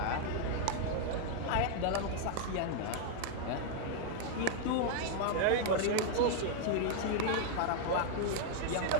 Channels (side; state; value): both; different; correlation 0.00